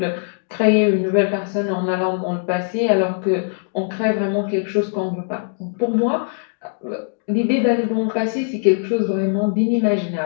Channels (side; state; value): right; silent; digital silence